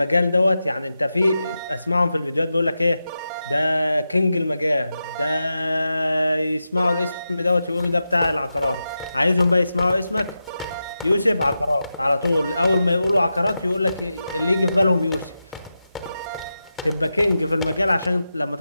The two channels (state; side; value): inverted; both; correlation -0.91